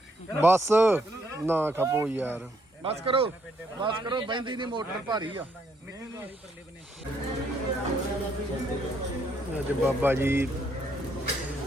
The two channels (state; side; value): normal; both; correlation 0.72